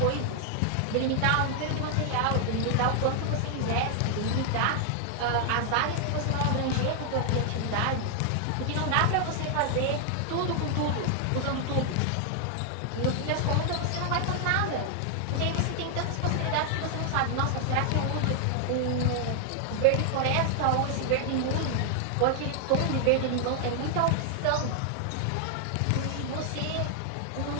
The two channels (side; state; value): both; different; correlation 0.00